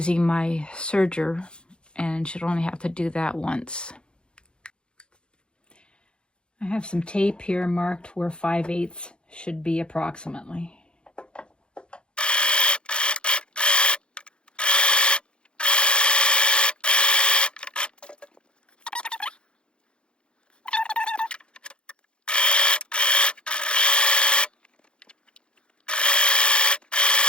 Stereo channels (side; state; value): right; late; 0.054 ms